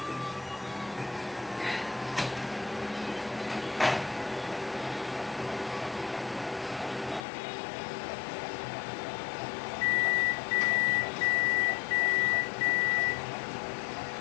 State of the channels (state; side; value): drops out; right; at 7.2 s